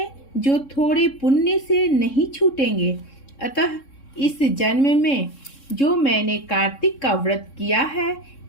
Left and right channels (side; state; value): right; late; 3.6 ms